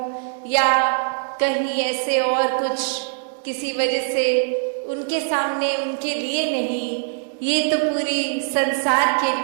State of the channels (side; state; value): left; silent; digital silence